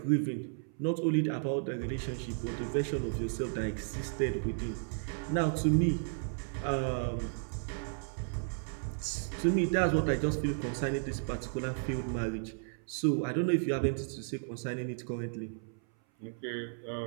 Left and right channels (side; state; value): left; silent; 55 dB below the other